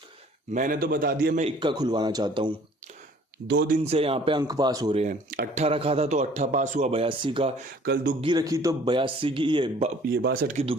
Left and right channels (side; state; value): both; normal; correlation 0.54